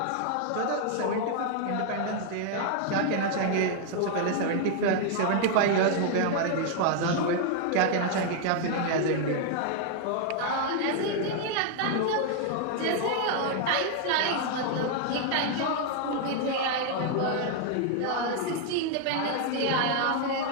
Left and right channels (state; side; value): different; both; correlation 0.00